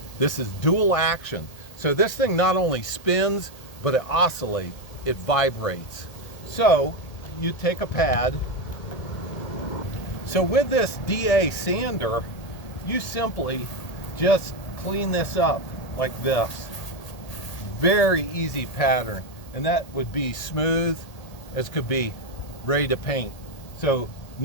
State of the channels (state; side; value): late; right; 1.8 ms